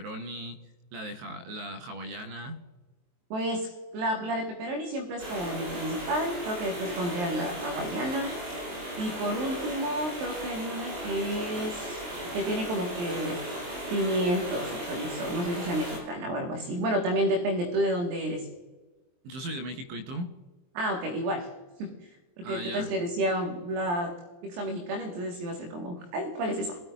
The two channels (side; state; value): left; late; 23 ms